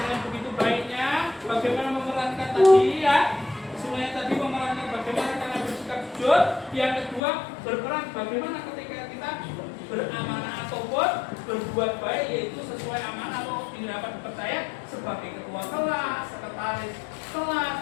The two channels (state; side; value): drops out; right; at 7.2 s